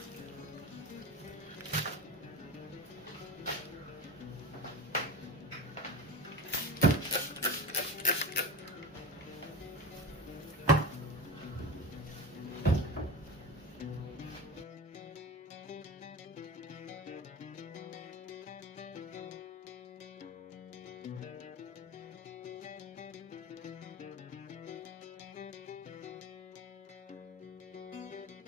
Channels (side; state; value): both; normal; correlation 0.28